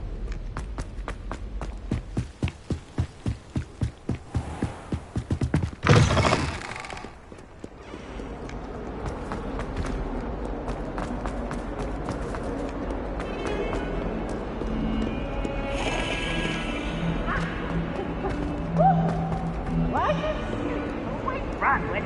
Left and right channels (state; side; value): identical; both; correlation 1.00